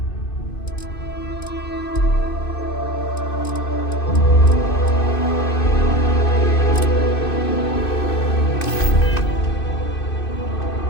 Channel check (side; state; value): right; late; 2.5 ms